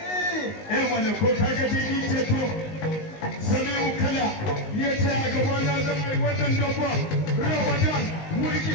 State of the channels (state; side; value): late; right; 19 ms